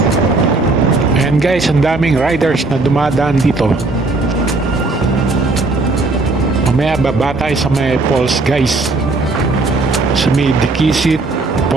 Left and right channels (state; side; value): quieter; left; 3.4 dB